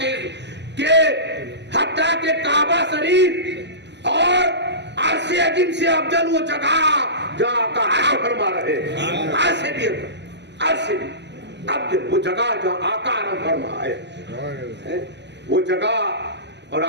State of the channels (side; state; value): left; late; 0.50 ms